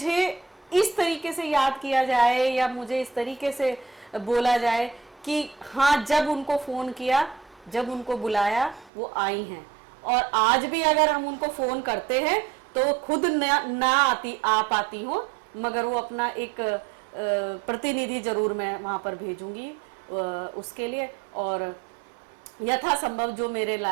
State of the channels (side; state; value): left; drops out; at 8.9 s